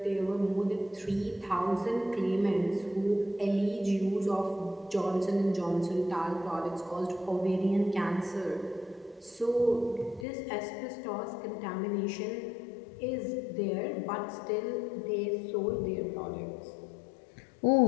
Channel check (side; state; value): right; drops out; at 10.2 s